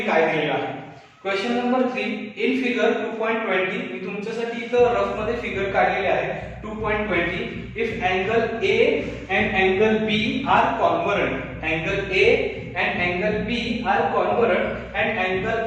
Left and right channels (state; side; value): identical; both; correlation 1.00